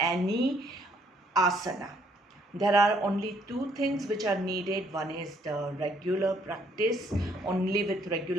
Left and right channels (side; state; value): both; normal; correlation 0.67